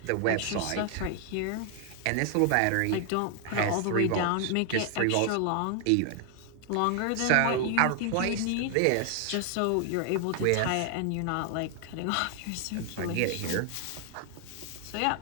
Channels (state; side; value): different; both; correlation 0.00